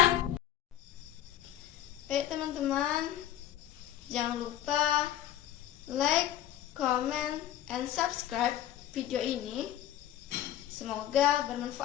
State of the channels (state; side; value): quieter; right; 12.1 dB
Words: Baik teman-teman, jangan lupa like, comment, and subscribe video ini. Semoga